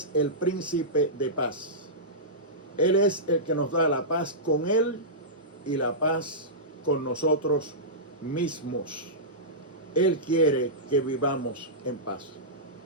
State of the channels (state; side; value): normal; both; correlation -0.16